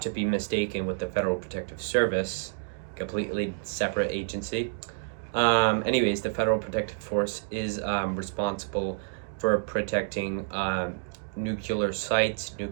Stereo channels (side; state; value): left; silent; digital silence